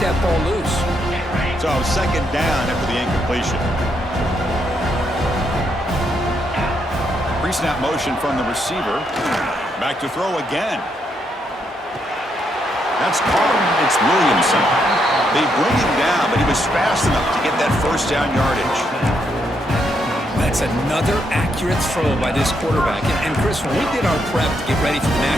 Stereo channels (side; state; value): both; normal; correlation 0.77